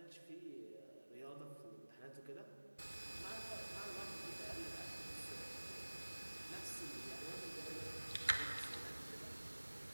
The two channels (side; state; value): both; inverted; correlation -1.00